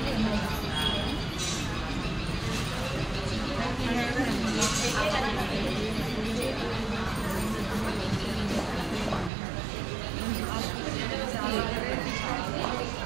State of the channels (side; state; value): left; drops out; at 9.3 s